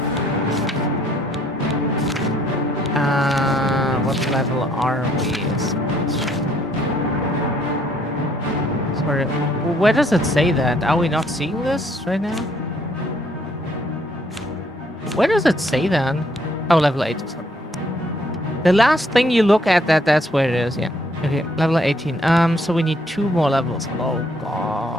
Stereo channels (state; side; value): normal; both; correlation 0.66